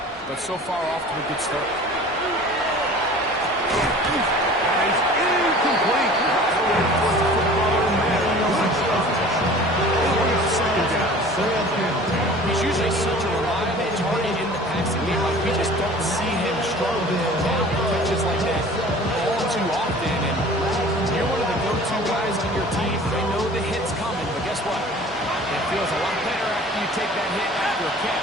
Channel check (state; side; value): normal; both; correlation 0.44